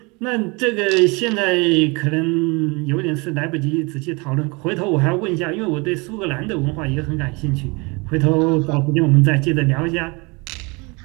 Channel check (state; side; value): quieter; left; 28.0 dB